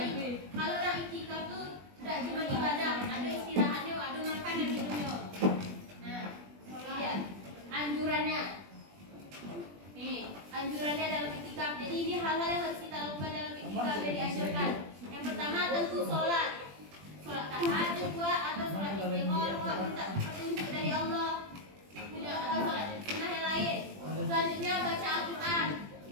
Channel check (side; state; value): left; late; 20 ms